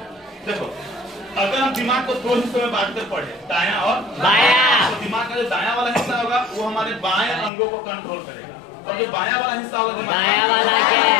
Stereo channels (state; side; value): drops out; right; at 7.5 s